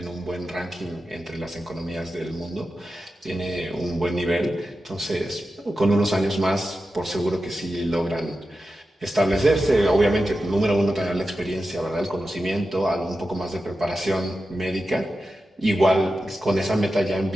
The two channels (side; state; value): both; normal; correlation 0.91